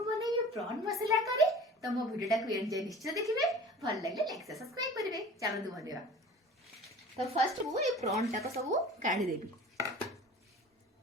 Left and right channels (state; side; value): normal; both; correlation 0.42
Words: बनेबी प्रॉन मसला करी। तो मो वीडियो टाको एंजॉय निश्चय देखिबे, भल लागले लाइक से सब्सक्राइब करिवे। चलो बनेबा। तो फर्स्ट मु ए प्रॉन टाको सब काढी देबी।